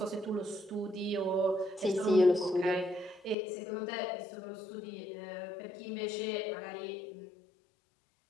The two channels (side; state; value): right; drops out; at 3.4 s